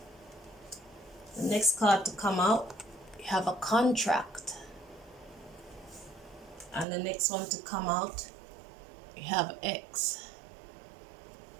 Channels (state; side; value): drops out; left; at 6.9 s